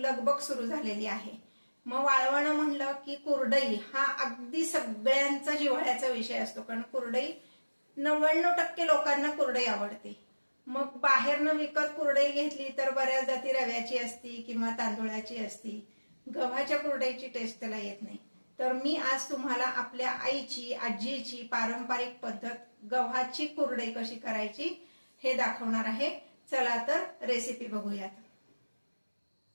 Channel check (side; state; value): both; inverted; correlation -1.00